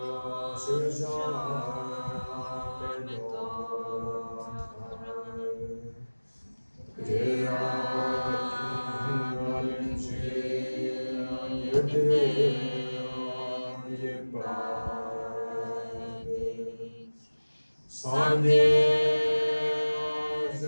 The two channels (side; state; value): both; inverted; correlation -1.00